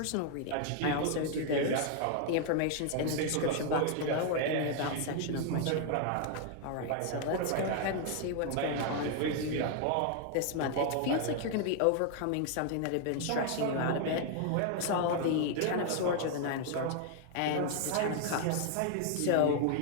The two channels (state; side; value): different; both; correlation 0.00